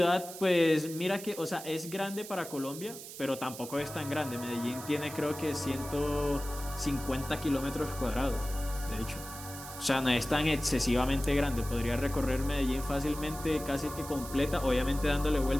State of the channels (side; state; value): right; noise; hiss, 12 dB below the sound